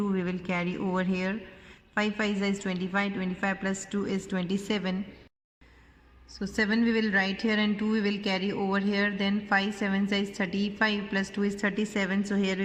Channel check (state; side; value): identical; both; correlation 1.00